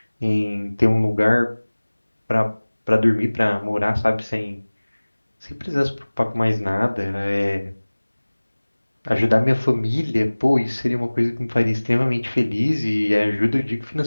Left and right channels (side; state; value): both; inverted; correlation -1.00